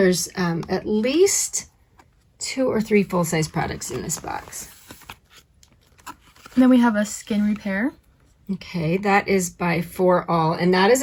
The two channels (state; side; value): identical; both; correlation 1.00